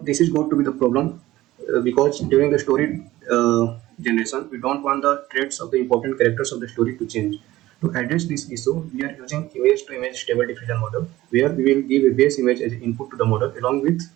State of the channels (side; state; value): left; quieter; 16.5 dB